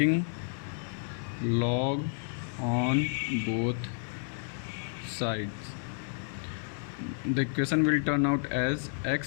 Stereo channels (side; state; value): right; silent; 57 dB below the other